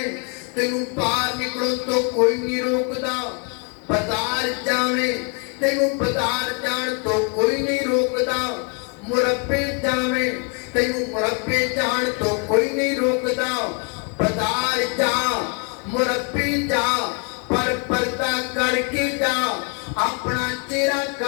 تینوں باہر نکلو تو کوئی نہیں روکدا بازار جاویں تینوں بازار جان تو کوئی نہیں روکدا مربے جاویں تینوں مربے جان تو کوئی نہیں روکدا بازار جا مربے جا پر پردہ کر کے جا اپنا چہرہ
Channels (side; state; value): right; quieter; 35.2 dB